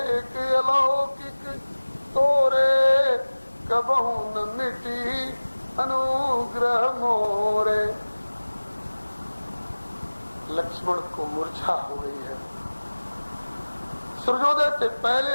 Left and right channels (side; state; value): both; inverted; correlation -1.00